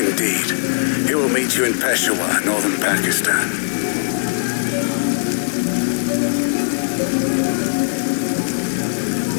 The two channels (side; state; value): right; silent; digital silence